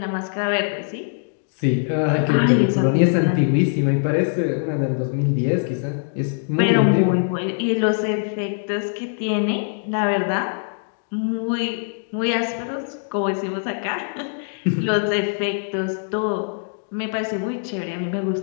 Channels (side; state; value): right; silent; digital silence